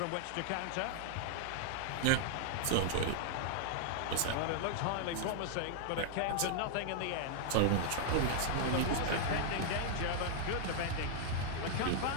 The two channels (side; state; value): both; different; correlation -0.01